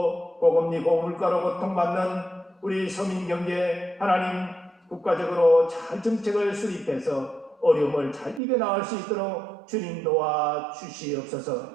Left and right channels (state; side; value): drops out; left; at 8.4 s